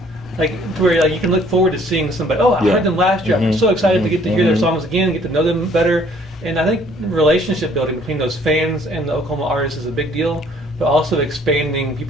to where you can look forward to seeing somebody. Oh, I heard them last year. I'm so excited to get to hear their songs again, get to know them better. And I think relationship building between those fans and the Oklahoma artists is a big deal. But also expanding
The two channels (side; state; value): both; normal; correlation 0.59